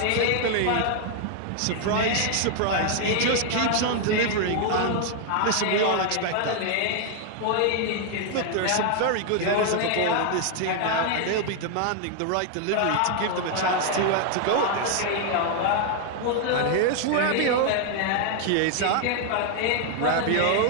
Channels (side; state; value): both; different; correlation 0.00